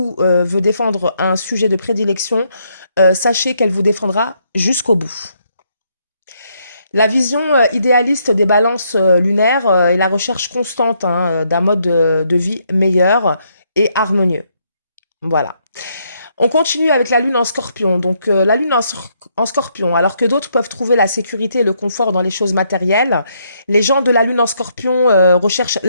veut défendre un sujet de prédilection, sachez qu'elle vous défendra jusqu'au bout. La vision idéaliste des balances lunaires est la recherche constante d'un mode de vie meilleur et harmonieux. Voilà. On continue avec la lune en scorpion. Donc la lune en scorpion, alors que d'autres peuvent trouver la sécurité et le confort dans les choses matérielles, les gens de la lune en scorpion recherchent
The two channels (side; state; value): both; inverted; correlation -0.74